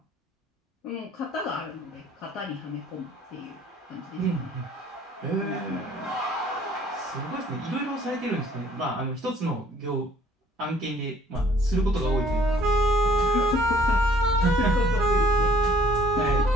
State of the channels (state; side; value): normal; both; correlation 0.57